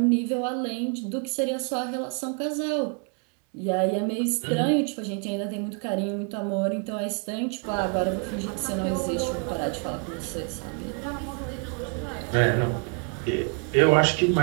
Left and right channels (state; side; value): quieter; left; 37.8 dB